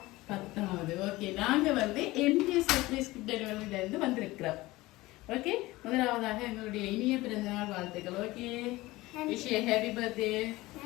10வது. ஓகே, நாங்க வந்து எம்ஜிஎஸ் சர்ப்ரைஸ் டெலிவரியில இருந்து வந்திருக்கிறோம். ஓகே, முதலாவதாக எங்களுடைய இனிய பிறந்தநாள் வாழ்த்துக்கள். Okay, wish you happy birthday.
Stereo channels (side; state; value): right; quieter; 19.4 dB